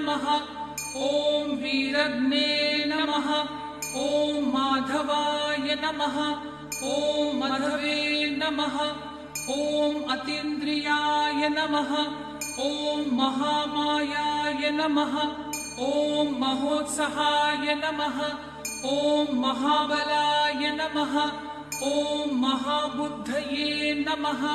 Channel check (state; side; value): identical; both; correlation 1.00